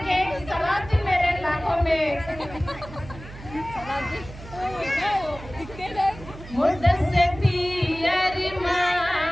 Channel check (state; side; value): noise; right; hum, 15 dB below the sound